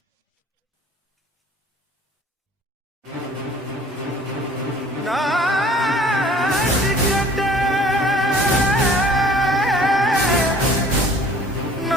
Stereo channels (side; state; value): both; normal; correlation 0.51